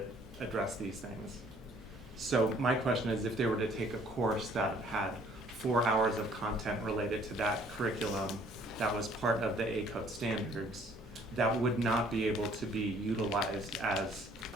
addressed these things. So my question is, if they were to take a course that had 4 hours of content related to that curriculum that was part of the ACODE standards, that would not be able to be utilized as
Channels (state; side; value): normal; both; correlation 0.59